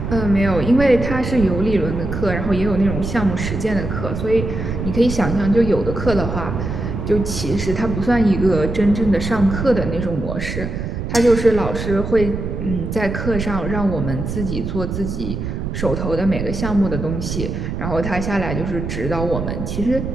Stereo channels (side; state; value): right; noise; rumble, 4 dB below the sound